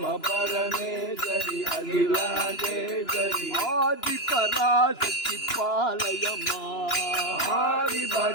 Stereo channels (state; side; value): late; right; 2.9 ms